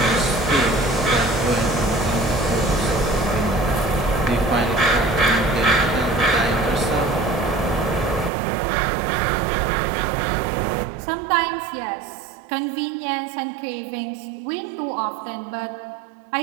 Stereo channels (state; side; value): drops out; left; at 8.3 s